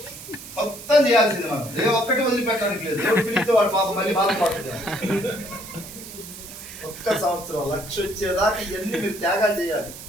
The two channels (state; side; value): noise; right; hiss, 14 dB below the sound